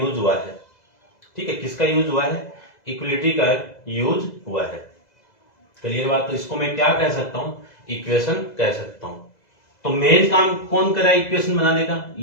हुआ है। ठीक है, किसका यूज हुआ है? इक्वलिटी का यूज हुआ है। क्लियर बात। तो इसको मैं क्या कह सकता हूं? इक्वेशन कह सकता हूं। तो मेन काम कौन कर रहा है इक्वेशन बनाने का?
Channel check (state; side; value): late; right; 2.0 ms